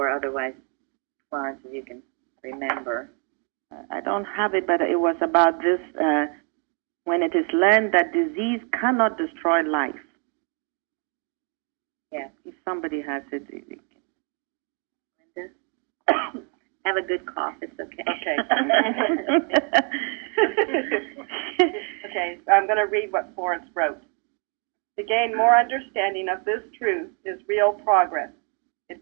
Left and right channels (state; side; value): quieter; left; 38.2 dB